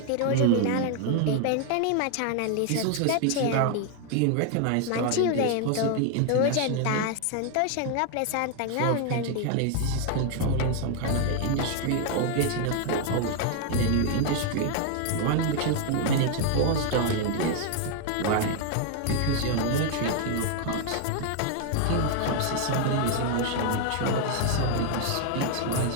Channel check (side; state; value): both; different; correlation 0.00